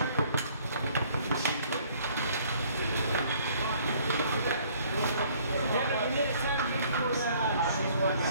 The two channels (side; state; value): both; inverted; correlation -0.59